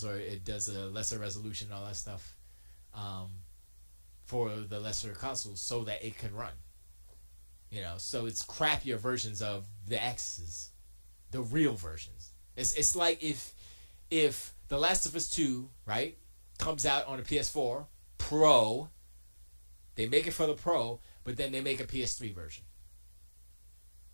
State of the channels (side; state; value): both; inverted; correlation -1.00